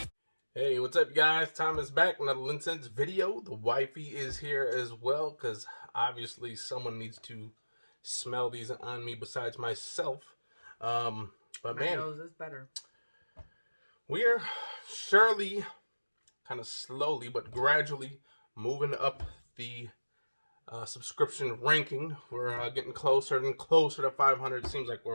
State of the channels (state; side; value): inverted; both; correlation -1.00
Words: what's up, guys? Tom is back. Another Incense video. The wifey is here as well, because obviously someone needs to smell these on me besides myself. But My man, nose is better. we're surely, kind of slowly but gradually moving up the subscription ranking. We're getting closer and closer to 500. It seems like